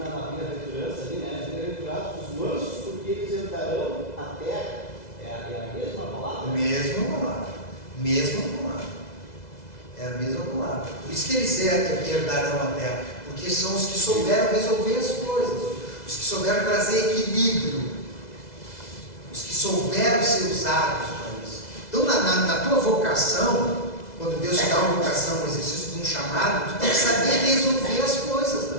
bem-aventurança, ali, né? Bem-aventurados os mansos, porque eles herdarão a terra. É a mesma palavra? Mesma palavra. É a mesma palavra. Por isso que eles herdarão a terra. Porque são os que souberam resolver as coisas. Os que souberam trazer equilíbrio. Os que souberam ser usados para isso. Então, na tua vocação, quando Deus te dá uma vocação, um exercício de um chamado, tu tem que saber resolver as coisas da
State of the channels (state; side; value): late; right; 2.0 ms